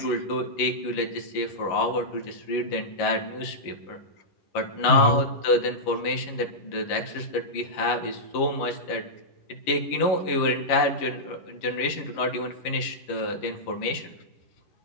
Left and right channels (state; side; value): late; right; 11 ms